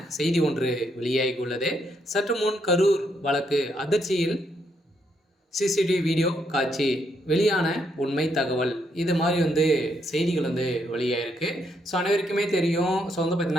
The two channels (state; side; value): normal; both; correlation 0.76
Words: செய்தி ஒன்று வெளியாகியுள்ளது. சற்று முன் கரூர் வழக்கு அதிர்ச்சியில் சிசிடிவி வீடியோ காட்சி வெளியான உண்மை தகவல். இது மாதிரி செய்திகள் வெளியாயிருக்கு. ஸோ அனைவருக்குமே தெரியும். ஸோ